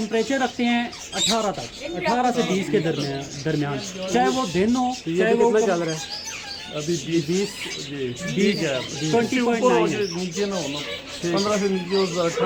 रखते हैं 18 तक, 18 से 20 के दरमियान, चाहे वो दिन हो चाहे वो चल रहा है। अभी 20 ठीक है, 20.9 नीचे ना होना, 15 से नीचे हो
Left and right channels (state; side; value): identical; both; correlation 1.00